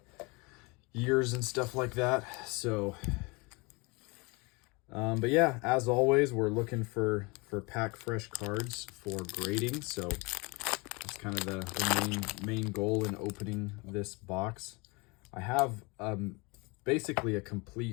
years and stuff like that. So but yeah, as always, we're looking for pack fresh cards for grading. So that's kind of the main goal in opening this box. I have basically a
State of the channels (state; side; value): quieter; right; 27.6 dB